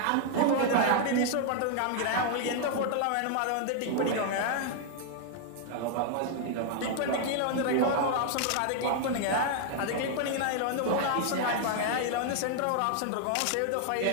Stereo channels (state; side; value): different; both; correlation 0.00